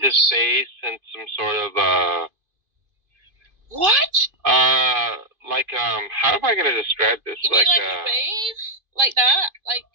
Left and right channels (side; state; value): left; late; 2.5 ms